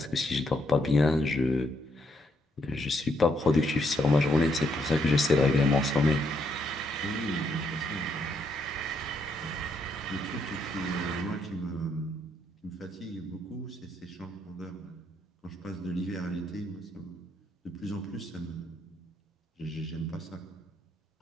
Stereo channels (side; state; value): both; normal; correlation 0.74